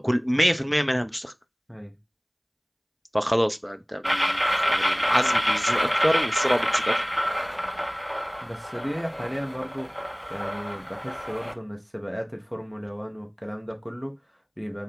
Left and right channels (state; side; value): identical; both; correlation 1.00